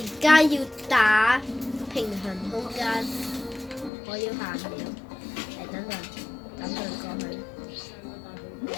家要打平衡空間，我要行了，等陣過去。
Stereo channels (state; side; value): drops out; right; at 3.9 s